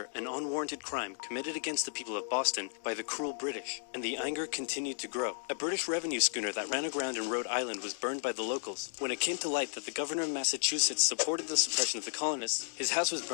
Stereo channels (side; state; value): right; silent; digital silence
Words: an unwarranted crime committed against the people of Boston by the cruel British, and the anger continued to grow. A British revenue schooner that ran aground in Rhode Island was burned by the locals. When it came to light that the governor of Massachusetts supported the suppression of the colonists, his house was